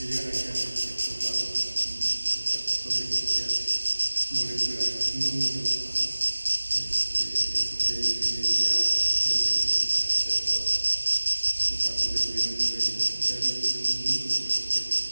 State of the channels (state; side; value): inverted; both; correlation -1.00